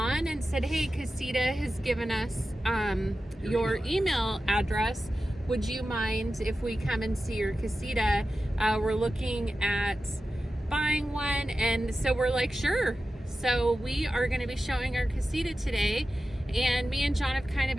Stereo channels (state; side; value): normal; both; correlation 0.93